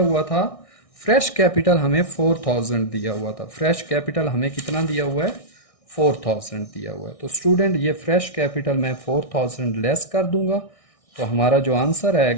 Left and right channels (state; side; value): late; right; 1.6 ms